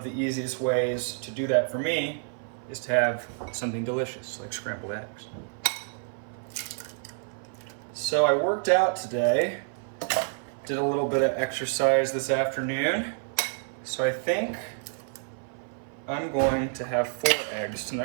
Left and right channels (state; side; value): silent; left; 56 dB below the other